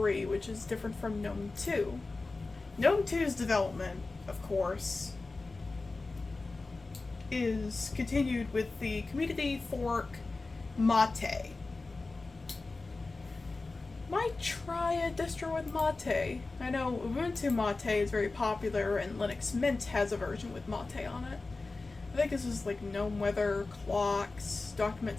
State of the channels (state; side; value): quieter; right; 3.5 dB